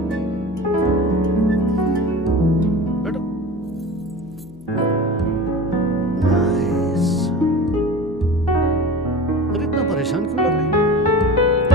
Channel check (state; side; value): normal; both; correlation 0.34